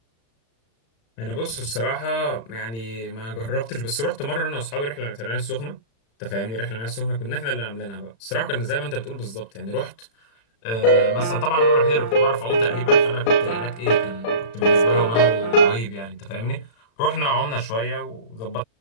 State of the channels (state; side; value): late; right; 35 ms